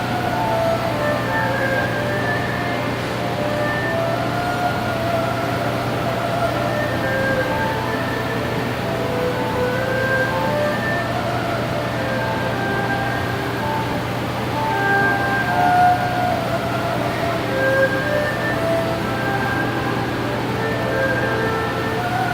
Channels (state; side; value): identical; both; correlation 1.00